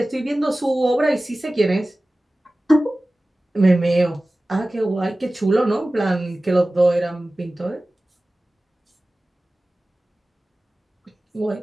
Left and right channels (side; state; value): both; normal; correlation 0.97